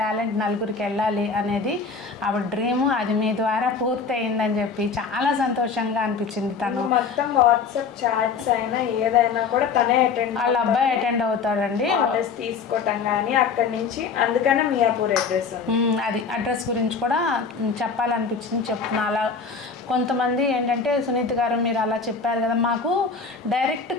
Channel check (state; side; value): quieter; right; 5.3 dB